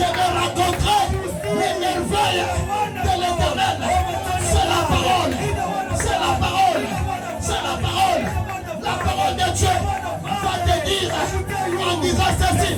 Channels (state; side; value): identical; both; correlation 1.00